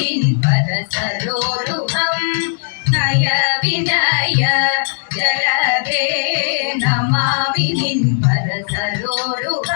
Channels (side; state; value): right; silent; digital silence